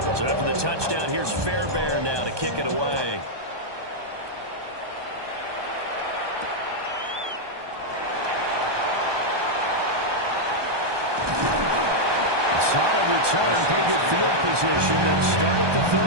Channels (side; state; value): left; late; 1.2 ms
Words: So after the touchdown, here's Fairbairn now to kick it away. A solid return, pretty good field position. They'll start at the